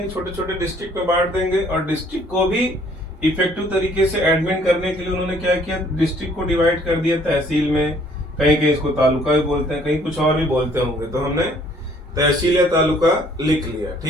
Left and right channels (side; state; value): both; normal; correlation 0.60